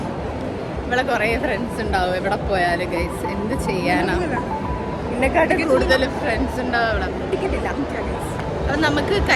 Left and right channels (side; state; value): both; identical; correlation 1.00